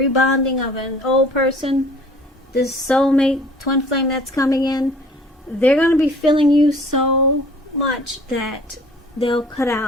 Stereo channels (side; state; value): both; normal; correlation 0.51